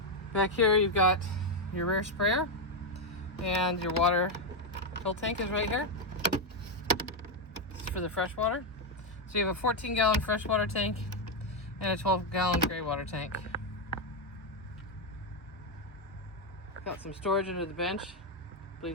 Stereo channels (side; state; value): both; normal; correlation 0.04